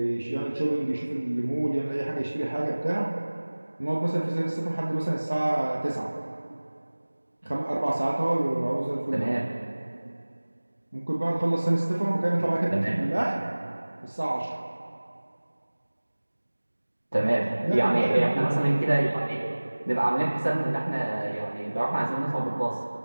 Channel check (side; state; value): both; inverted; correlation -1.00